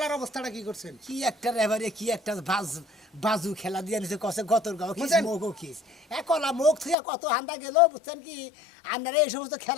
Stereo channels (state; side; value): drops out; right; at 7.0 s